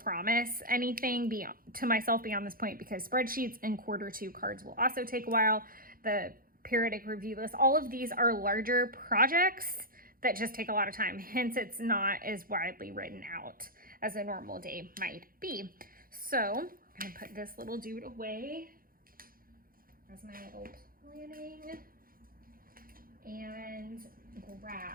anything to myself beyond this point, because spreadsheets and Q2 cards will also take a while. The periodic review list, all of these are larger projects that just take a lot of time. Hence, it's not as widely written out as a normal day might be. So I'm gonna put this little dude away as my little planning, and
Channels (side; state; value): left; late; 0.42 ms